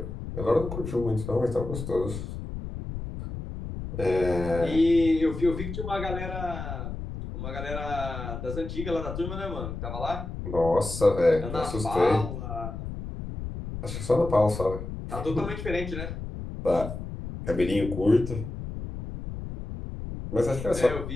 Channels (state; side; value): noise; left; rumble, 7 dB below the sound